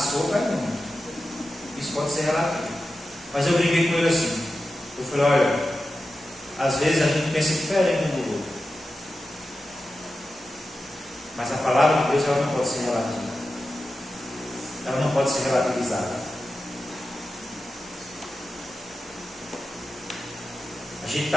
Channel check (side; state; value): both; normal; correlation 0.92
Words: é muito. Isso pode ser relativo. Mas eu brinquei com ele assim. Eu falei: olha, às vezes a gente pensa diferente um do outro. Mas a palavra de Deus, ela não pode ser relativa. Ela não pode ser relativizada. A gente